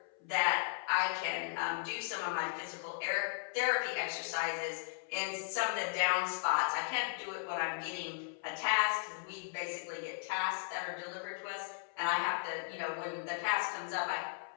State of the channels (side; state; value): right; silent; 53 dB below the other